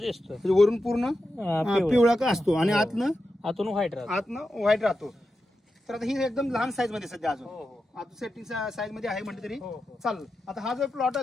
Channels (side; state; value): both; normal; correlation 0.90